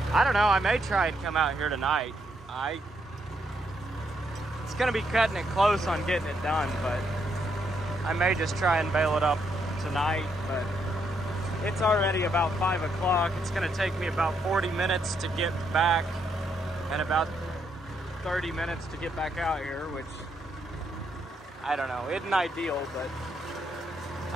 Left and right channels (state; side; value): normal; both; correlation 0.76